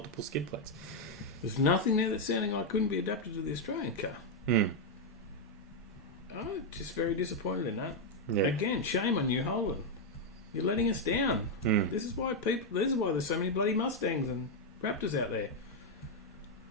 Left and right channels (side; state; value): both; normal; correlation 0.00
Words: skid plates. There's nothing there that's sounding like couldn't be adapted to the Australian car. Just very disappointed in that. Yeah. Again, shame on you, Holden. You're letting us down. This is why there's so many bloody Mustangs and Raptors out there.